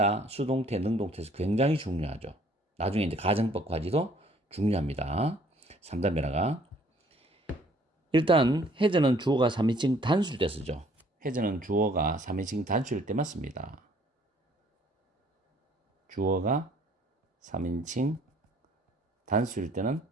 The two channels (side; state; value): both; normal; correlation 0.59